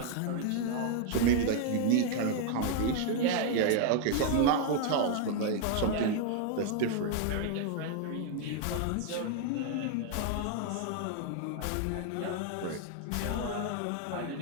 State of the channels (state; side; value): different; both; correlation 0.00